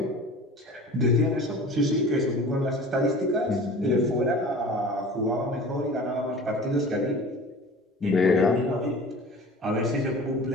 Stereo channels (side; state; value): both; normal; correlation 0.40